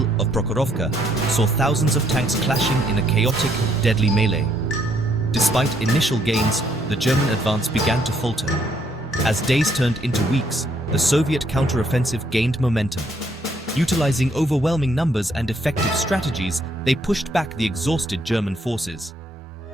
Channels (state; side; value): normal; both; correlation 0.70